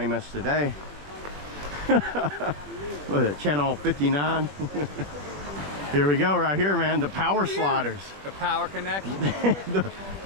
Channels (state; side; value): late; left; 20 ms